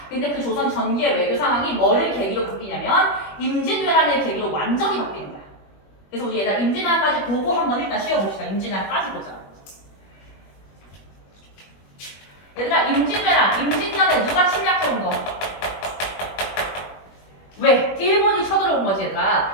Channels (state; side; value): late; right; 21 ms